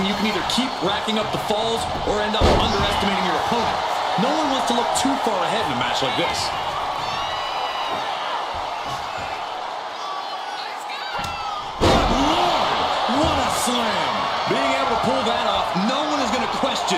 you can either keep racking up the falls or end up underestimating your opponent. No one wants to look too far ahead in a match like this. Good Lord! What a slam! Being able to pull that off, no one is going to question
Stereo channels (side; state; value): both; identical; correlation 1.00